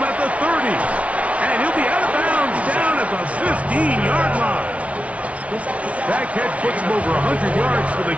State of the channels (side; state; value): left; late; 0.064 ms